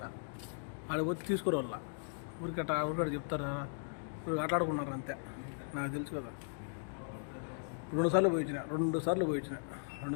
ఆడ వచ్చి తీసుకోరు వాళ్ళ ఊరికట్ట చెప్తారు. ఇప్పుడు ఆటలాడుకున్నారు అంతే. నాకు తెలుసు కదా. 2 సార్లు పోయించిన 2 సార్లు పోయి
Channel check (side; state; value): right; silent; digital silence